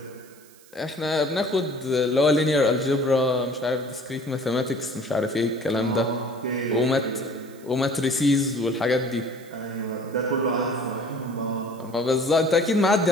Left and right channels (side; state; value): right; noise; hiss, 25 dB below the sound